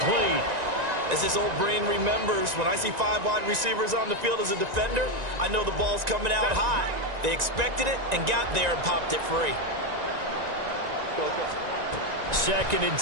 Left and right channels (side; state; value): left; late; 1.9 ms